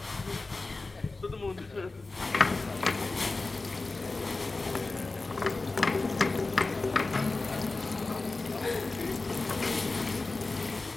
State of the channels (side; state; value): right; quieter; 3.5 dB